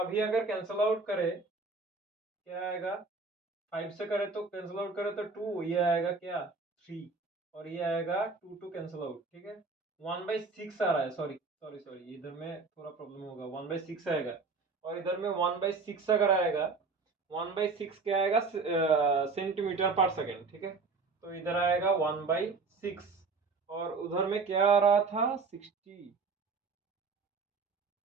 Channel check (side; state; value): left; quieter; 4.2 dB